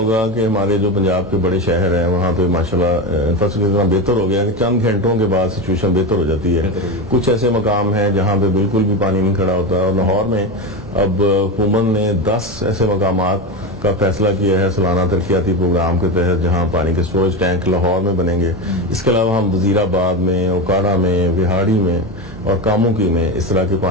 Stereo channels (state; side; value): normal; both; correlation 0.19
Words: کہ ہمارے جو پنجاب کے بڑے شہر ہیں وہاں پہ ماشاءاللہ انفراسٹرکچر اتنا بہتر ہو گیا کہ چند گھنٹوں کے بعد سچویشن بہتر ہو جاتی ہے. کچھ ایسے مقام ہیں جہاں پہ بالکل بھی پانی نہیں کھڑا ہوتا, اور لاہور میں اب حکومت نے 10 ایسے مقامات کا فیصلہ کیا ہے سالانہ ترقیاتی پروگرام کے تحت جہاں پانی کے سٹوریج ٹینک لاہور میں بنیں گے. اس کے علاوہ ہم وزیر آباد میں, اوکاڑا میں, وہاڑی میں اور کاموکی میں اس طرح کے